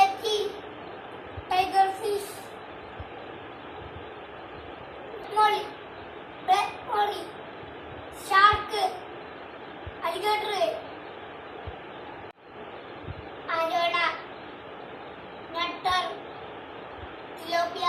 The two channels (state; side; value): identical; both; correlation 1.00